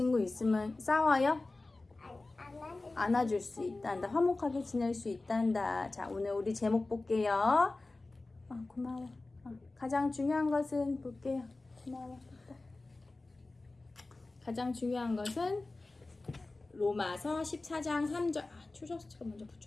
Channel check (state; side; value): quieter; right; 3.2 dB